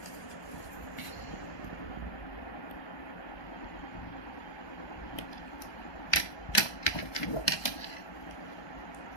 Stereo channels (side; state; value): right; late; 1.2 ms